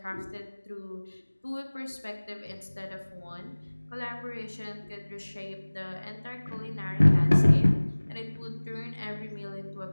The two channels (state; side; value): inverted; both; correlation -1.00